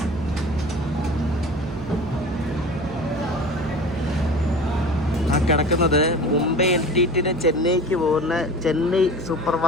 കിടക്കുന്നത് മുംബൈ എൻടിടിന് ചെന്നൈക്ക് പോകുന്ന ചെന്നൈ സൂപ്പർ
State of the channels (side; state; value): right; noise; hum, 11 dB below the sound